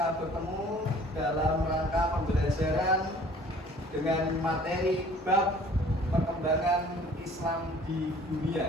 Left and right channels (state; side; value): normal; both; correlation 0.52